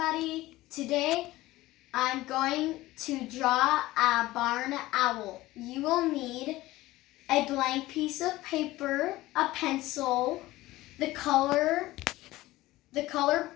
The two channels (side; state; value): right; quieter; 17.7 dB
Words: today I'm going to draw a barn owl. You will need a blank piece of paper, a pencil, the color